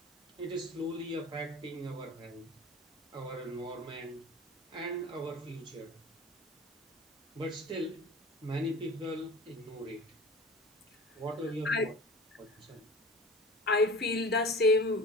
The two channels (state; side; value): normal; both; correlation 0.39